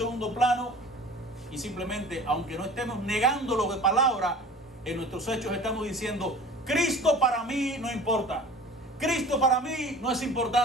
plano y simplemente, aunque no estemos negándolo de palabra, en nuestros hechos estamos diciendo: Cristo para mí no importa. Cristo para mí no es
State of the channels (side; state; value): both; normal; correlation 0.43